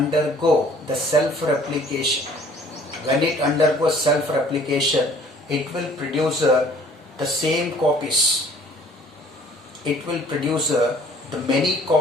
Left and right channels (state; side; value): normal; both; correlation 0.54